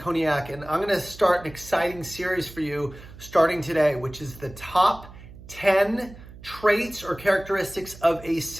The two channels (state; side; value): noise; right; hum, 18 dB below the sound